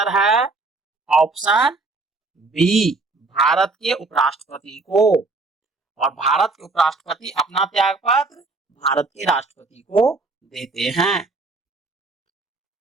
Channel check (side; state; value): left; quieter; 3.5 dB